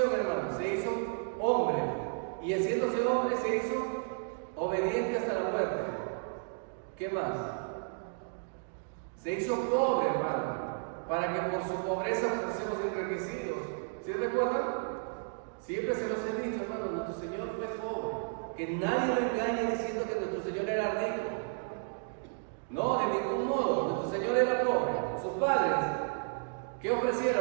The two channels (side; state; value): left; silent; digital silence